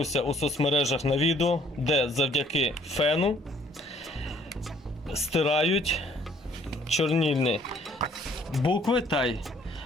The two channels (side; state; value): both; normal; correlation 0.60